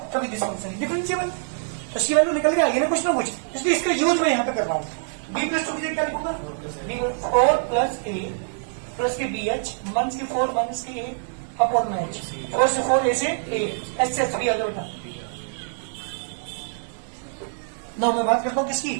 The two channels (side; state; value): left; silent; digital silence